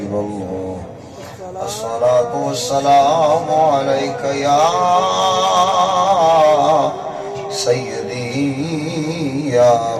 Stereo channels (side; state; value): both; identical; correlation 1.00